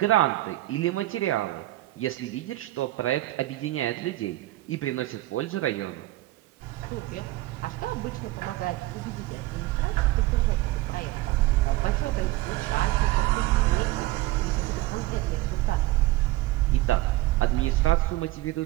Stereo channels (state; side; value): quieter; left; 17.6 dB